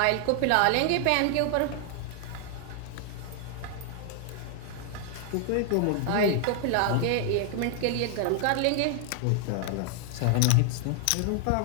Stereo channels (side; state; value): both; different; correlation 0.00